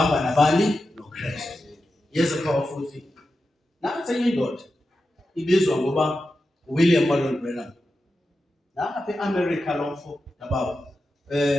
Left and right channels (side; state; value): both; normal; correlation 0.91